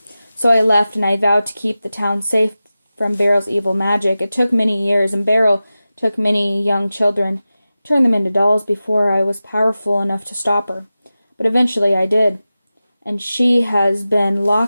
So I left, and I vowed to keep the town safe from Beryl's evil magic. It took many years, and Beryl took many young children, turned them into dolls before I was powerful enough to stop her. But eventually I did, and she has been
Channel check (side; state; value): both; inverted; correlation -0.95